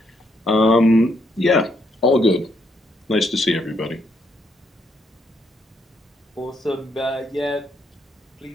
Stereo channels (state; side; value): normal; both; correlation 0.74